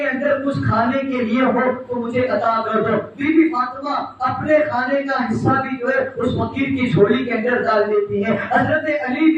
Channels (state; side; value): identical; both; correlation 1.00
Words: اندر کچھ کھانے کے لیے ہو تو مجھے عطا کر دو۔ بی بی فاطمہ اپنے کھانے کا حصہ بھی جو ہے اس فقیر کی جھولی کے اندر ڈال دیتی ہے۔ حضرت علی